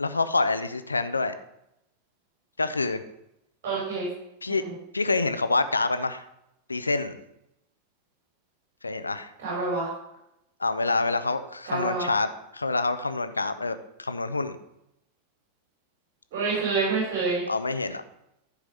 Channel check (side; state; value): both; inverted; correlation -0.65